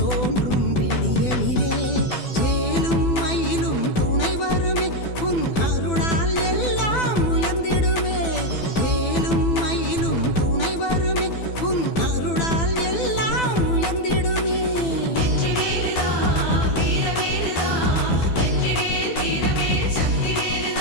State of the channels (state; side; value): late; right; 12 ms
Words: விடியலிலே. வேலும் மயிலும் துணை வருமே உன் அருளால் எல்லாம் உயர்ந்திடுமே. வேலும் மயிலும் துணை வருமே உன் அருளால் எல்லாம் உயர்ந்திடுமே.